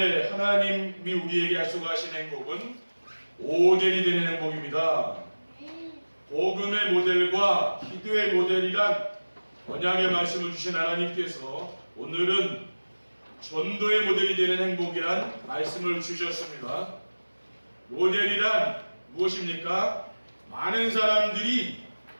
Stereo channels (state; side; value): inverted; both; correlation -1.00